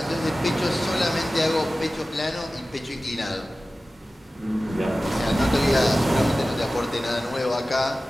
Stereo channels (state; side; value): normal; both; correlation 0.96